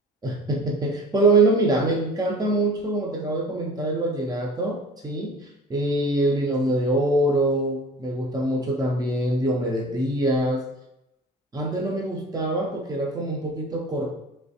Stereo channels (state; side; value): normal; both; correlation 0.41